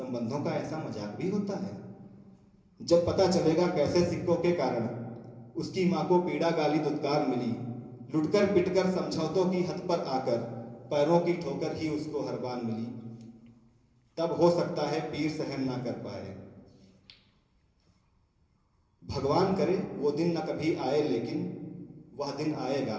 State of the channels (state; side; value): identical; both; correlation 1.00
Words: का ऐसा मजाक भी होता है। जब पता चलेगा कैसे सिक्कों के कारण उसकी माँ को पीड़ा गाली दुत्कार मिली लुटकर पिटकर समझौतों की हद पर आकर पैरों की ठोकर ही उसको हर बार मिली तब हो सकता है पीर सहन ना कर पाए। भगवान करे वो दिन न कभी आए लेकिन वह दिन आएगा